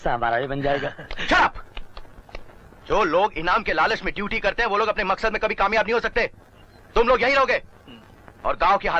हमारा भी बन जाएगा। चुप! जो लोग इनाम के लालच में ड्यूटी करते हैं वो लोग अपने मकसद में कभी कामयाब नहीं हो सकते। तुम लोग यहीं रहोगे और गांव के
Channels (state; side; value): identical; both; correlation 1.00